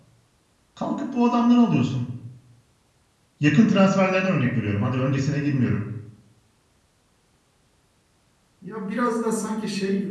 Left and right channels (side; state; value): both; identical; correlation 1.00